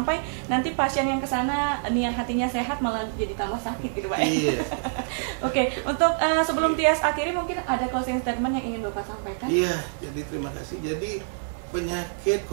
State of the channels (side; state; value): left; silent; digital silence